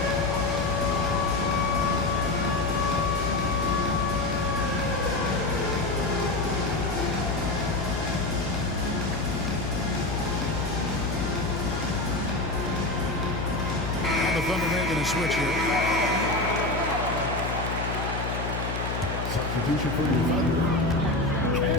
The Thunder making a switch here. Substitution for your Thunder.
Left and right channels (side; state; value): left; noise; hum, 4 dB below the sound